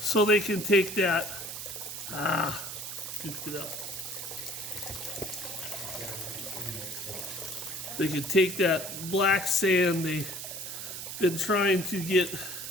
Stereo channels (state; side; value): noise; right; hiss, 8 dB below the sound